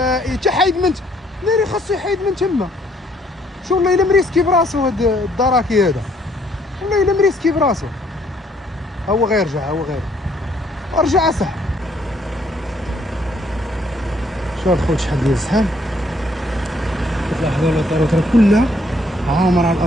تا حايد من ناري خاصو يحيد من تما. شو والله الا مريسكي براسو هاد الدراكي هذا، والله الا مريسكي براسو. هو غيرجع هو غير رجع صح. شوف خوت شحال ديال الزحام. كتلاحظوا الطرق راه كلها عامره على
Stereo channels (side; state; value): both; normal; correlation 0.66